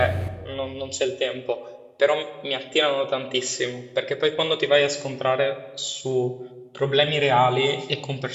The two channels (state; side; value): identical; both; correlation 1.00